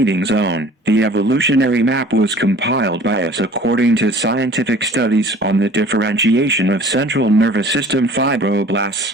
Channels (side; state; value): both; normal; correlation 0.48